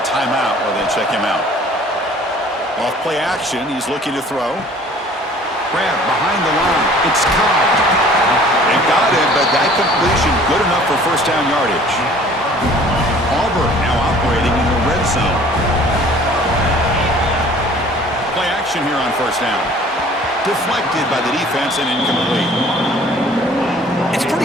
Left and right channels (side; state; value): both; normal; correlation 0.51